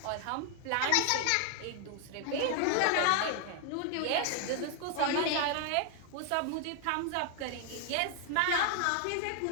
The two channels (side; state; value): both; different; correlation 0.00